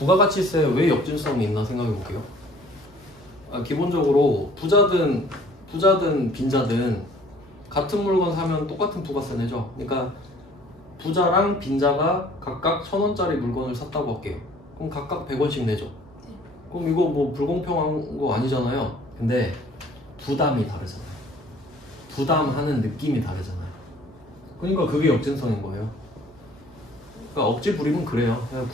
왜 역진성이 있나 생각해 볼게요. 기본적으로 부자든 빈자든 같은 물건 사면 똑같은 부가세 내죠. 그러니까 부자랑 빈자가 각각 1,000원짜리 물건을 샀다고 할게요. 그럼 각각 100원씩 내죠. 그럼 이거 뭐 불공평한 거 아니잖아요. 근데 부담이 다르잖아요. 부담하는 느낌이 다르잖아요. 그러니까 그게 역진성인 거예요. 그러니까 억지 부리면 그래요. 그냥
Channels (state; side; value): noise; right; hum, 27 dB below the sound